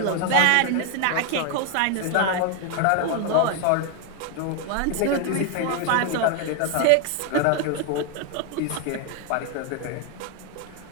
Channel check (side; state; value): both; different; correlation 0.01